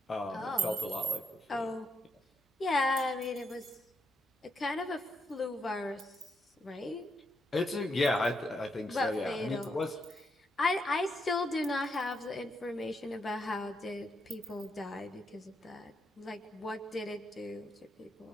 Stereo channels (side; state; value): both; normal; correlation 0.79